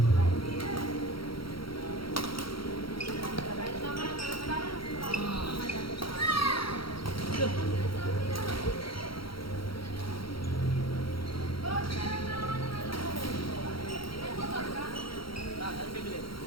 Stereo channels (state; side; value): late; right; 0.74 ms